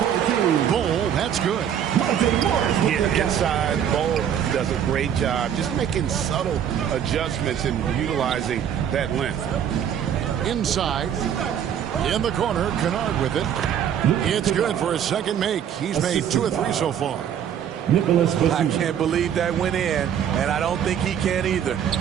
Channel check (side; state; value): left; quieter; 9.1 dB